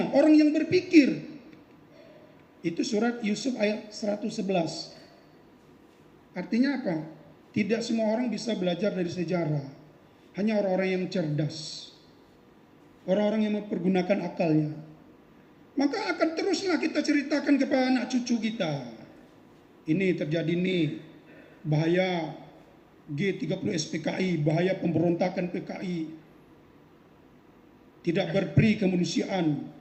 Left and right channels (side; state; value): both; identical; correlation 1.00